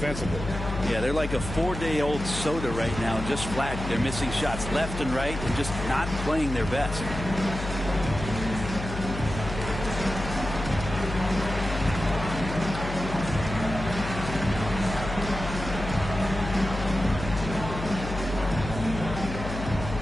Yeah, they're like a 4-day-old soda right now, just flat. They're missing shots left and right and just not playing their best.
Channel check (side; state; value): left; noise; hum, 7 dB below the sound